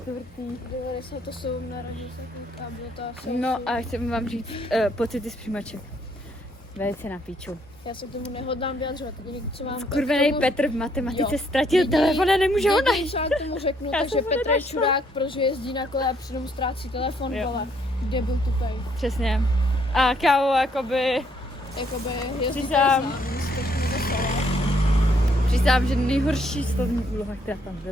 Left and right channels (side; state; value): both; normal; correlation 0.69